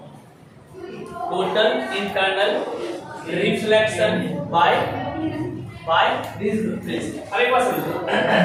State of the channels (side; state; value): both; identical; correlation 1.00